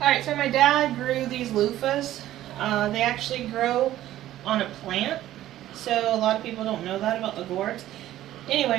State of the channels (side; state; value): left; quieter; 13.7 dB